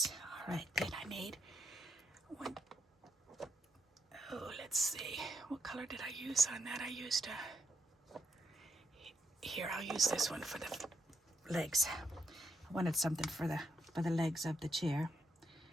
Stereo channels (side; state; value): both; normal; correlation 0.78